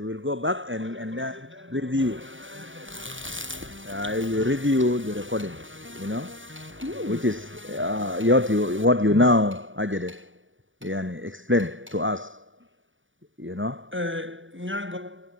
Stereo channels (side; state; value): left; late; 0.57 ms